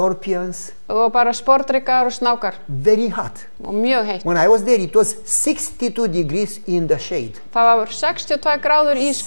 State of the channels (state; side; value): inverted; both; correlation -1.00